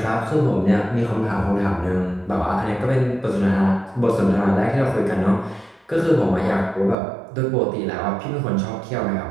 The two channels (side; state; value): left; drops out; at 7.0 s